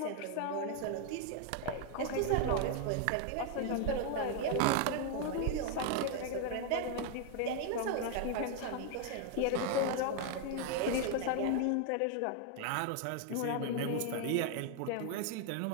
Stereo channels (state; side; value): different; both; correlation 0.00